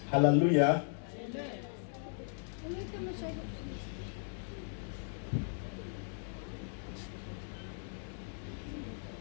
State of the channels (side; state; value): right; silent; digital silence